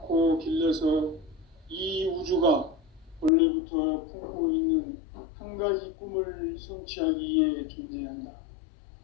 길러서 이 우주가 원래부터 품고 있는 한 가지 꿈을 성취하기 위해 존재한다.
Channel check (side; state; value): right; drops out; at 3.3 s